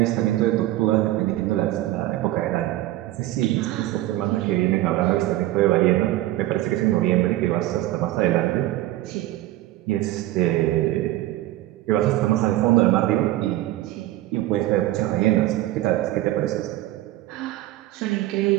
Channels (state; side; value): quieter; left; 15.8 dB